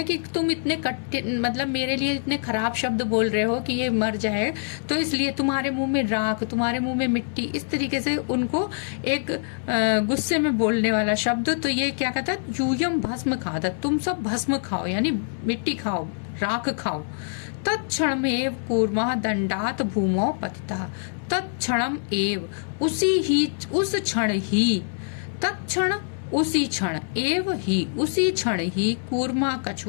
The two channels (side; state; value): right; silent; digital silence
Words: कि तुम इतने कठिन, मतलब मेरे लिए इतने खराब शब्द बोल रहे हो कि ये मर जाए, तो इसलिए तुम्हारे मुंह में राख, तुम्हारे मुंह में मिट्टी, इस तरीके से उनको एक गुस्से में बोलने वाला शब्द। तो ये क्या कहता है, यूयम भस्म खादत, तुम सब भस्म खाओ, यानी मिट्टी खाओ, राख खाओ। तत्क्षणम एव कूर्मः दंडात भूमौ पतितः, तत्क्षणम एव, उस क्षण ही, तत्क्षण उसी क्षण, एव ही उसी क्षण ही, कूर्मा